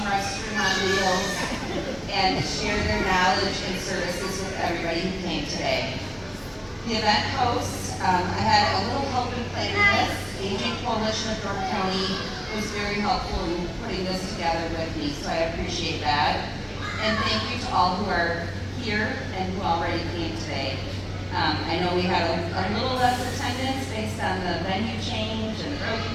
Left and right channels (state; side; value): identical; both; correlation 1.00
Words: restaurant meals, and share their knowledge and services with everybody who came today. The event hosts, I had a little help in planning this. Aging Coalition of Door County was very helpful in putting this together with me, so I appreciate that. And thank you to all who are here and who already came today. I know we had a little less attendance based on the venue change and road